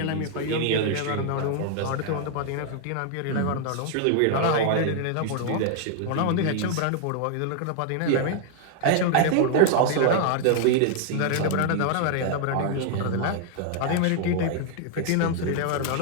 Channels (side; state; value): both; different; correlation 0.00